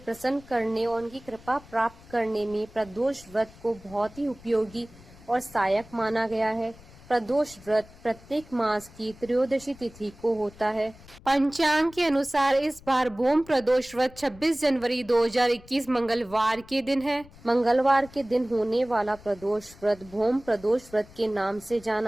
करने और उनकी कृपा प्राप्त करने में प्रदोष व्रत को बहुत ही उपयोगी और सहायक माना गया है। प्रदोष व्रत प्रत्येक मास की त्रयोदशी तिथि को होता है। पंचांग के अनुसार इस बार भूम प्रदोष व्रत 26 जनवरी 2021 मंगलवार के दिन है। मंगलवार के दिन होने वाला प्रदोष व्रत भूम प्रदोष व्रत के नाम से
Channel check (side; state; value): left; noise; rumble, 22 dB below the sound